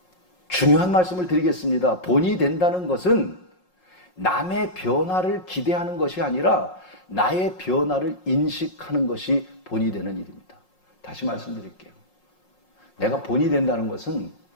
중요한 말씀을 드리겠습니다. 본이 된다는 것은 남의 변화를 기대하는 것이 아니라 나의 변화를 인식하는 것이 본이 되는 일입니다. 다시 말씀드릴게요. 내가 본이 된다는 것은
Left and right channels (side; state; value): right; late; 5.5 ms